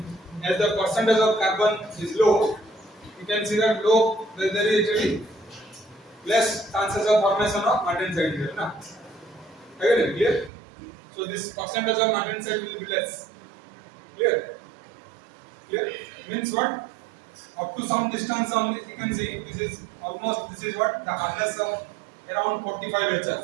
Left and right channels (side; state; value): left; drops out; at 10.5 s